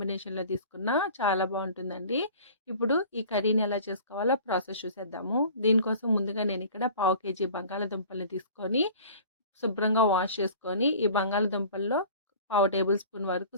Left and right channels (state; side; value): inverted; both; correlation -0.44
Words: తీసుకున్నా చాలా బావుంటుందండి. ఇప్పుడు ఈ కర్రీని ఎలా చేసుకోవాలో ప్రాసెస్ చూసేద్దాము. దీనికోసం ముందుగా నేనిక్కడ పావు కేజీ బంగాళదుంపల్ని తీసుకొని శుభ్రంగా వాష్ చేసుకొని, ఈ బంగాళదుంపల్లో పావు టేబుల్ స్పూన్ వరకు